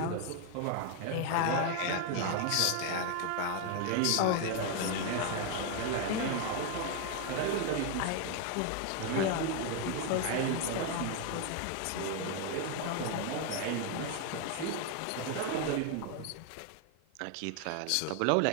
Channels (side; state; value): both; different; correlation 0.01